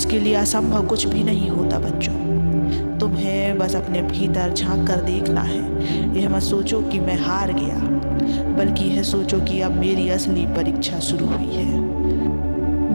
लिए असंभव कुछ भी नहीं होता बच्चों। तुम्हें बस अपने भीतर झांक कर देखना है। यह मत सोचो कि मैं हार गया, बल्कि यह सोचो कि अब मेरी असली परीक्षा शुरू हुई है।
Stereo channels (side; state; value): both; inverted; correlation -1.00